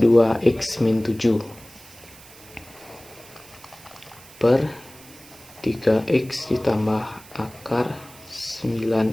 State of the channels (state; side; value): noise; right; hiss, 21 dB below the sound